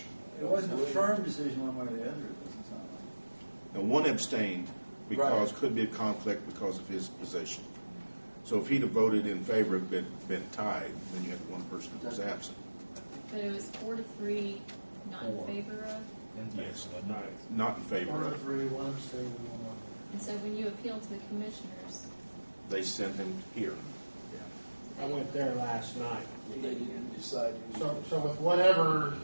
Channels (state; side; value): inverted; both; correlation -1.00